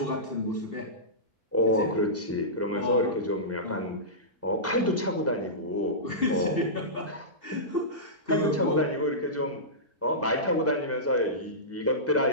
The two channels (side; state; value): both; normal; correlation -0.18